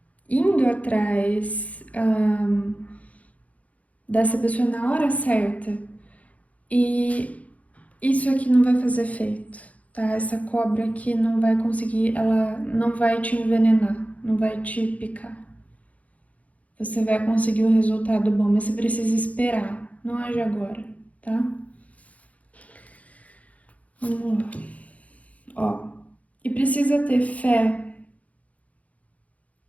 indo atrás dessa pessoa na hora certa. E isso aqui não vai fazer efeito, tá? Essa cobra aqui não vai conseguir, ela não vai te envenenar, não vai te picar. Você vai conseguir um resultado bom, mas você precisa esperar, não age agora, tá? Vamos lá. Ó, E precisa ter fé.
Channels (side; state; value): right; late; 0.068 ms